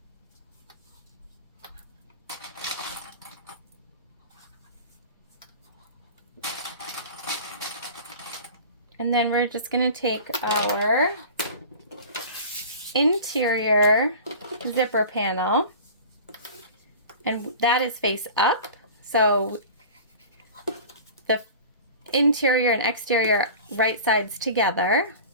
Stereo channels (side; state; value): both; inverted; correlation -0.38